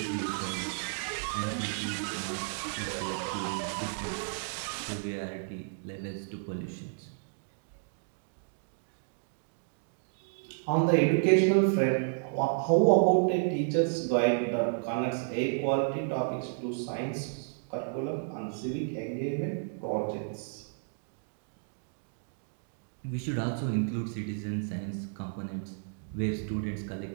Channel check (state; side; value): silent; left; digital silence